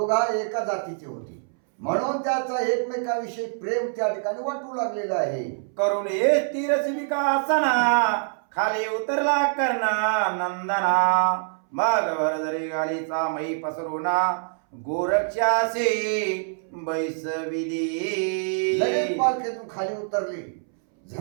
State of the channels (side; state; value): left; silent; 62 dB below the other